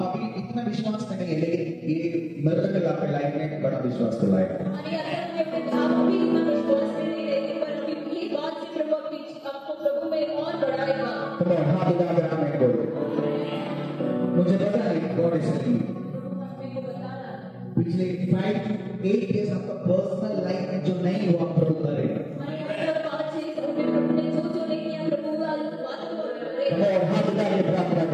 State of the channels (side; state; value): both; identical; correlation 1.00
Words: अभी इतना विश्वास करेंगे लेकिन ये मिरेकल आपके लाइफ में बड़ा विश्वास तो लाएगा मुझे पता है गॉड इज पिछले 5 to 8 years आपका पर्सनल लाइफ में जो नहीं हुआ प्रभु करेगा हाथ उठा के प्रार्थना